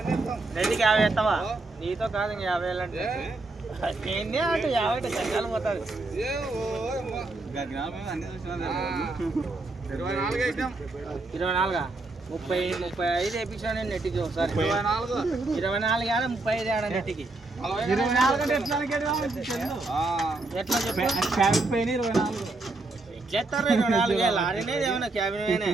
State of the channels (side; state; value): left; quieter; 3.1 dB